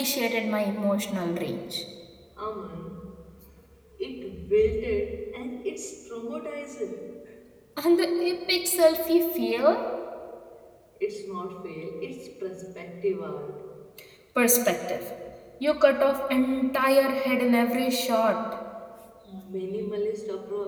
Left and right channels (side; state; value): both; identical; correlation 1.00